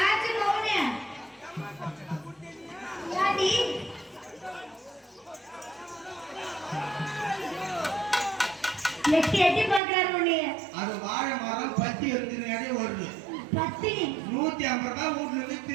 மௌனே யாடி எட்டி எட்டி பாக்குறாரு உன்னைய. அது வாழை மரம் பத்தி எடுத்துனாலே ஓடுது. பத்தி 150 ரூபாய் வீட்டுல இருந்து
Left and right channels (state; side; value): drops out; left; at 9.8 s